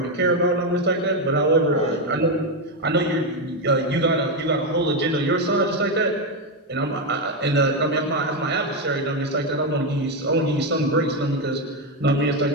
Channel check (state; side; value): normal; both; correlation 0.07